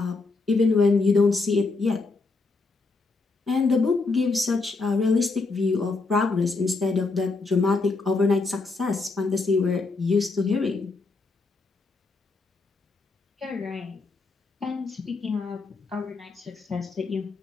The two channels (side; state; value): right; quieter; 3.8 dB